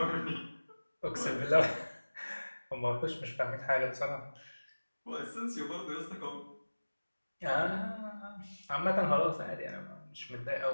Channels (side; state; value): both; inverted; correlation -1.00